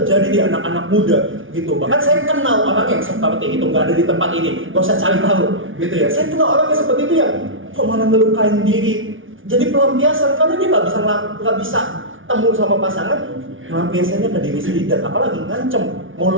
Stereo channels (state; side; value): late; left; 0.57 ms